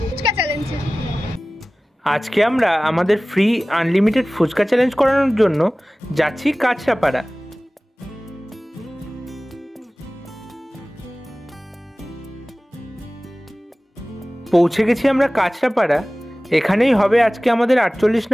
আজকে আমরা আমাদের ফ্রি আনলিমিটেড ফুচকা চ্যালেঞ্জ করানোর জন্য যাচ্ছি কাঁচরাপাড়া। পৌঁছে গেছি আমরা কাঁচরাপাড়া। এখানেই হবে আজকে আমাদের 48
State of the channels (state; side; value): normal; both; correlation 0.97